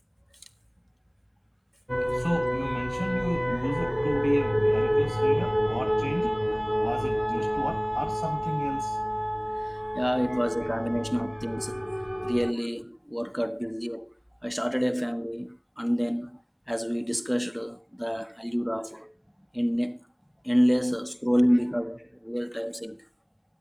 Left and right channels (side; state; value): both; identical; correlation 1.00